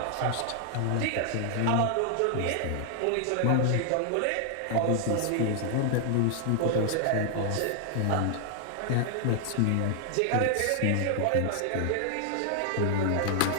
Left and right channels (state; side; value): different; both; correlation 0.00